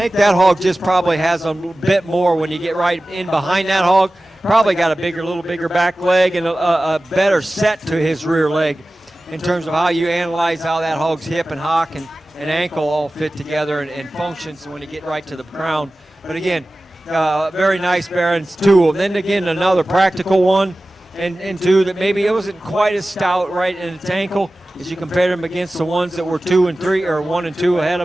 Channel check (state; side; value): normal; both; correlation 0.96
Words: that hog just probably has a bit more when you get right in behind that hog. Probably got a little bigger back leg and a better set to his rear leg in terms of how you analyze how that hog's hip and hock and ankle all fit together and functions when you get right to the ground. But again, very nice Barons, two of them. Then again, another practical one, and two that maybe it wasn't quite as stout right in its ankle as you compare them against the ones that were 2 and 3 or 1 and 2 ahead